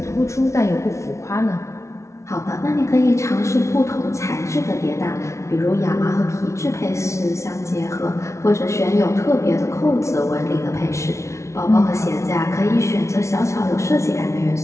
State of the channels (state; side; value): late; right; 0.14 ms